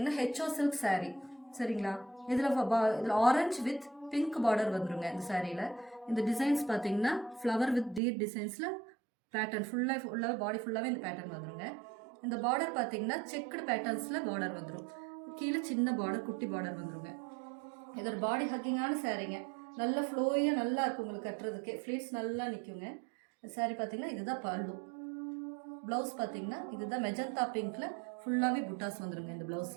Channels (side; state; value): left; drops out; at 8.0 s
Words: ஹெச்ஓ சில்க் saree. சரிங்களா? இதுல ஆரஞ்சு வித் பிங்க் பார்டர் வந்துருங்க இந்த சாரியில. இந்த டிசைன்ஸ் பாத்தீங்கன்னா ஃப்ளவர் வித் டீர் டிசைன்ஸ்ல பேட்டர்ன் ஃபுல்லா பாடி ஃபுல்லாவே இந்த பேட்டர்ன் வந்துருங்க. இந்த பார்டர் பாத்தீங்கன்னா செக்குடு பேட்டர்ன்ஸ்ல பார்டர் வந்துரும். கீழே சின்ன பார்டர் குட்டி பார்டர் வந்துருங்க. இது ஒரு பாடி ஹக்கிங்கான சாரீங்க. நல்ல ஃப்ளோயாக நல்லா இருக்கும் உங்களுக்கு கட்டுறதுக்கே. ஃப்ளீட்ஸ் நல்லா நிற்குங்க. சாரீ பார்த்தீங்கன்னா இதுதான் பல்லு. ப்ளவுஸ் பார்த்தீங்கன்னா இதுதான் மெஜந்தா பிங்க்ல ஃபுல்லாகவே புட்டாஸ் வந்துருங்க இந்த